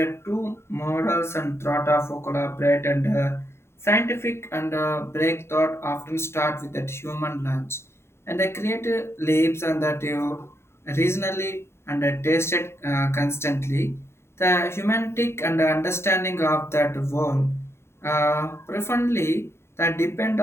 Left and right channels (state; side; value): late; right; 0.12 ms